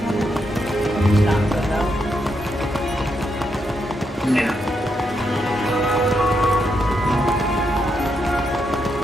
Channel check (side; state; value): both; normal; correlation 0.81